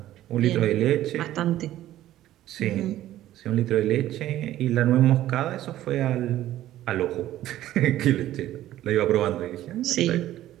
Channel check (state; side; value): quieter; left; 13.7 dB